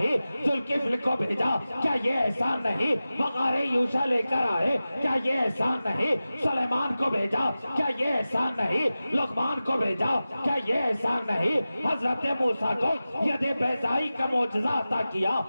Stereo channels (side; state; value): both; inverted; correlation -0.95